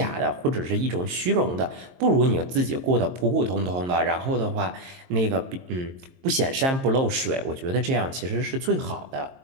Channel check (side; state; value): left; late; 22 ms